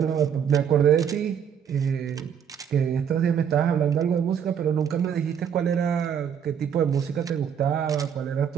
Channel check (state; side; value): quieter; left; 8.0 dB